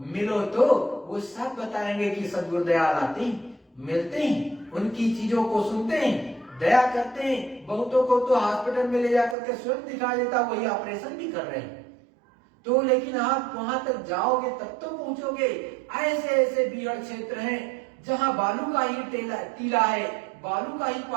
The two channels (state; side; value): drops out; left; at 9.3 s